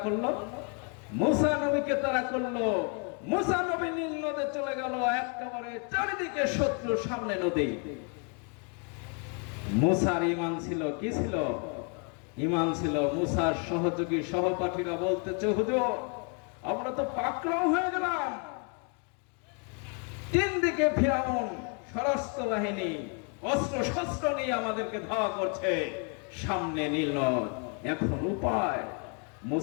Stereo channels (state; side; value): quieter; right; 38.3 dB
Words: করলো? মুসা নবীকে তারা করলো। মুসা নবী নীল নদে চলে গেল, একেবারে চারিদিকে শত্রু, সামনে নদী। মুসার ঈমান ছিল, কি ছিল? ঈমান ছিল। মুসার সহযোগী সহপাঠীরা বলতেছে, হুজুর আমরা তো পাকড়াও হয়ে গেলাম, তিন দিকে ফিরাউন সশস্ত্র বাহিনী অস্ত্র শস্ত্র নিয়ে আমাদেরকে ধাওয়া করছে, সামনে নীল নদ, এখন উপায়?